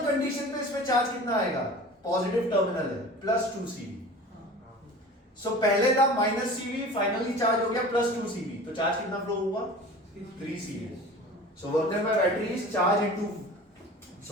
कंडीशन पे इसमें चार्ज कितना आएगा? पॉजिटिव टर्मिनल है, +2 CV। सो पहले था -CV, फाइनली चार्ज हो गया +2 CV। तो चार्ज कितना फ्लो हुआ? 3 CV। So work done by battery is charge into,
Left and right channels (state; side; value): normal; both; correlation 0.39